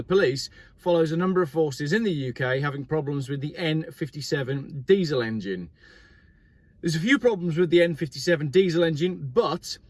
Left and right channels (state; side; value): identical; both; correlation 1.00